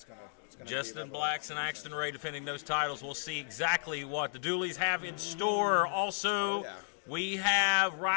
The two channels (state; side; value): silent; right; digital silence